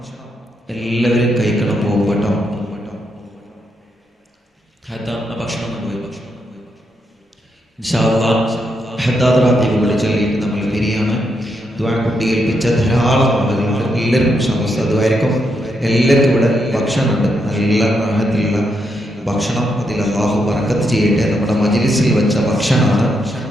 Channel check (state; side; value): normal; both; correlation 0.81